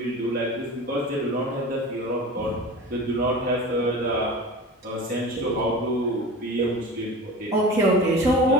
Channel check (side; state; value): both; normal; correlation 0.34